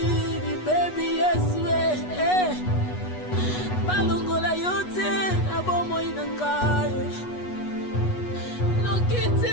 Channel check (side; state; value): right; late; 8.2 ms